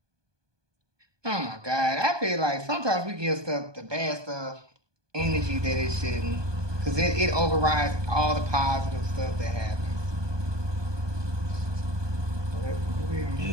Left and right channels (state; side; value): late; left; 1.2 ms